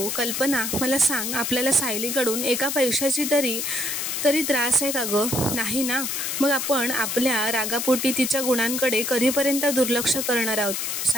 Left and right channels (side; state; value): left; noise; hiss, 2 dB below the sound